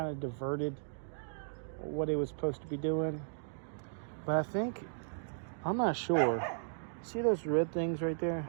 of diverted what it was supposed to be doing. But I think, I'm not sure. See those red things right there?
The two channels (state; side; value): silent; left; digital silence